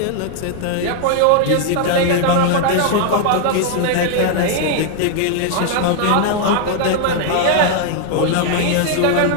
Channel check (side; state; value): both; different; correlation 0.00